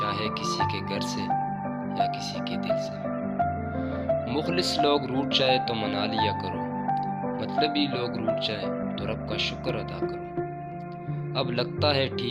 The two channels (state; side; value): identical; both; correlation 1.00